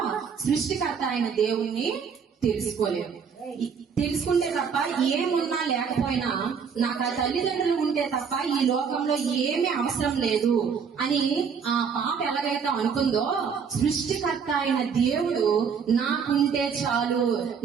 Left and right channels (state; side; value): quieter; left; 6.4 dB